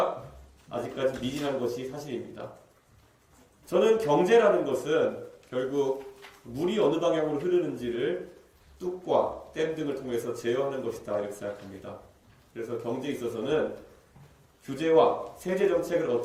아직까지 미진한 것이 사실입니다. 저는 경제라는 것은 결국 물이 어느 방향으로 흐르는지를 뚝과 댐 등을 통해서 제어하는 것이다 이렇게 생각합니다. 그래서 경제에 있어서는 규제와 세제 정책을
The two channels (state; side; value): identical; both; correlation 1.00